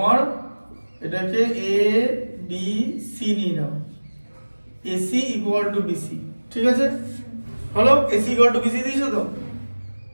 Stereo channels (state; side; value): inverted; both; correlation -1.00